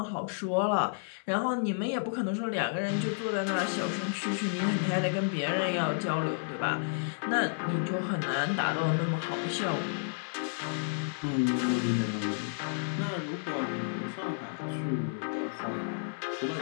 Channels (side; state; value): right; silent; digital silence